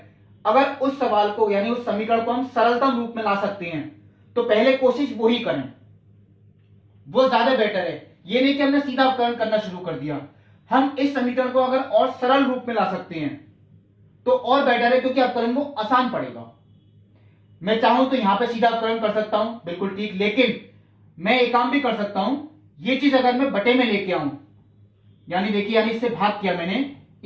अगर उस सवाल को यानी उस समीकरण को हम सरलतम रूप में ला सकते हैं तो पहले कोशिश वो ही करें, वो ज्यादा बेटर है। ये नहीं कि हमने सीधा अवकलन करना शुरू कर दिया। हम इस समीकरण को अगर और सरल रूप में ला सकते हैं तो और बेटर है, क्योंकि अवकलन वो आसान पड़ेगा। मैं चाहूं तो यहां पे सीधा अवकलन कर सकता हूं, बिल्कुल ठीक, लेकिन मैं एक काम भी कर सकता हूं। ये चीज अगर मैं बटे में लेके आऊं, यानी देखिए, यानी इससे भाग किया मैंने,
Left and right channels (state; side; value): identical; both; correlation 1.00